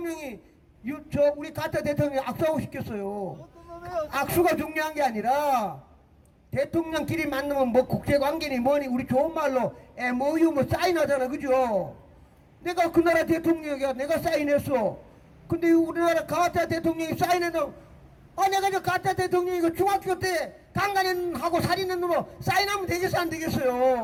우리 가짜 대통령이 악수하고 싶겠어요? 악수가 중요한 게 아니라, 대통령끼리 만나면 국제관계니 뭐니 우리 좋은 말로 MOU 사인하잖아. 그죠? 내가 그 나라 대통령이야. 내가 사인했어. 근데 우리나라 가짜 대통령이 사인해도, 내가 저 가짜 대통령이고 중학교 때 강간하고 살인한 놈으로 사인하면 되겠어, 안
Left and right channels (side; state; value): both; identical; correlation 1.00